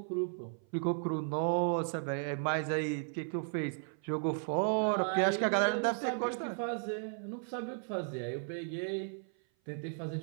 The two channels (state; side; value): silent; left; 54 dB below the other